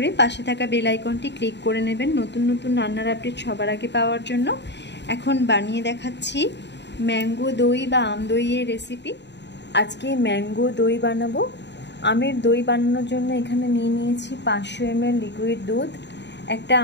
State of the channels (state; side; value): late; right; 0.51 ms